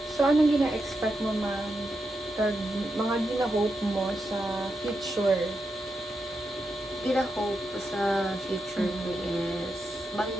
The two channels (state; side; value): normal; both; correlation 0.86